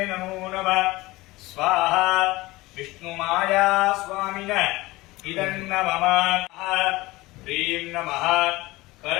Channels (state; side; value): quieter; right; 20.1 dB